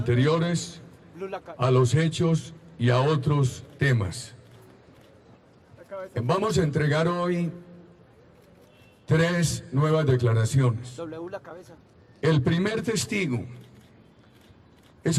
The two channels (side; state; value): both; identical; correlation 1.00